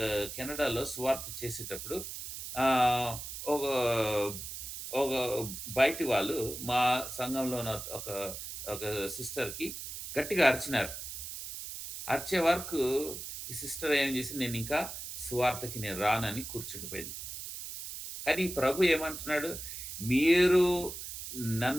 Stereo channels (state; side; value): noise; right; hiss, 8 dB below the sound